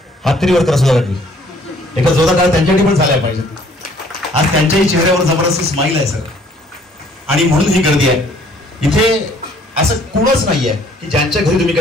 हात तरी वर करा सुधा काकी. एका जोरदार काळ त्यांच्यासाठी पण झाल्या पाहिजे. आज त्यांच्याही चेहऱ्यावर जबरदस्त स्माईल आहे सर. आणि म्हणून ही गर्दी आहे. इथे असं कुणच नाहीये की ज्यांच्या घरी तुम्ही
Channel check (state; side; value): normal; both; correlation 0.59